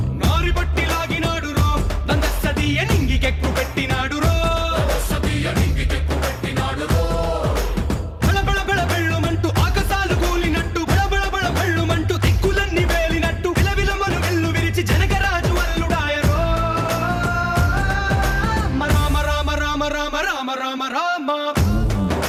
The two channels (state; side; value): identical; both; correlation 1.00